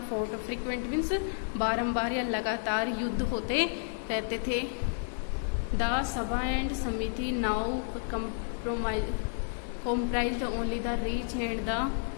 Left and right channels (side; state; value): right; silent; digital silence